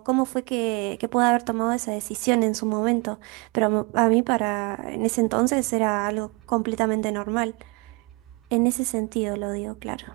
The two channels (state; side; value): quieter; left; 29.0 dB